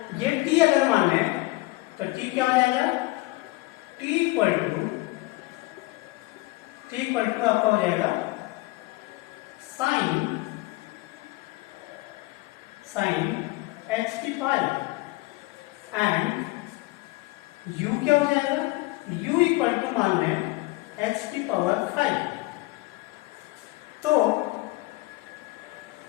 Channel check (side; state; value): right; quieter; 21.8 dB